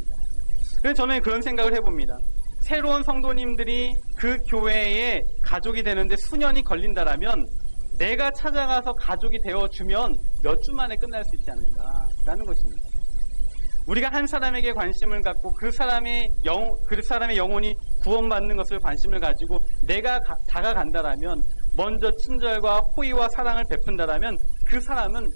그래서 저는 그런 생각을 해봅니다. 새로운 성도님들이 그 교회에 가족이 되는데 수년이 걸린다라면 내가 찾아가서 가족이 되어주면 몇 주 만에 끝날 수 있지 않는가라는 것입니다. 우리가 한 사람에게 관심을 갖고 그 사람의 영혼이 구원받는 것을 관심을 가지고 내가 다가간다라면, 먼저 친절과 호의와 사랑을 베푼다라면 그 사람은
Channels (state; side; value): inverted; both; correlation -1.00